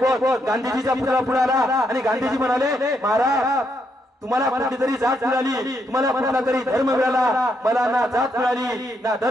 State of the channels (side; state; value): both; normal; correlation 0.77